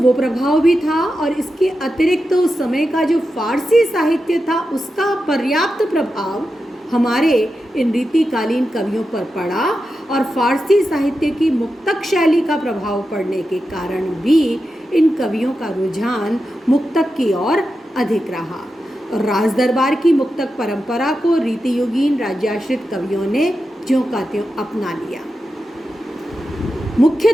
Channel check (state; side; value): normal; both; correlation 0.90